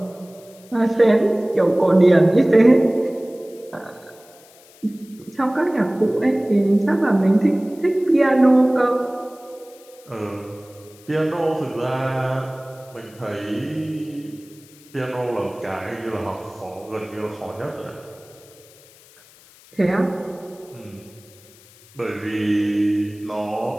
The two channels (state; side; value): noise; left; hiss, 25 dB below the sound